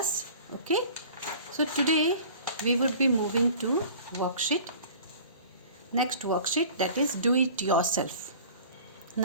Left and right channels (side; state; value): both; inverted; correlation -0.44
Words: Okay, so today we would be moving to next worksheet, that is do it yourself.